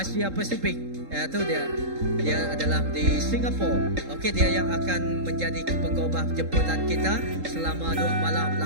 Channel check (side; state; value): left; late; 3.8 ms